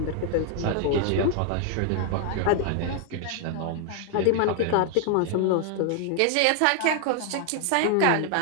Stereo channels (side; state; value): both; different; correlation 0.00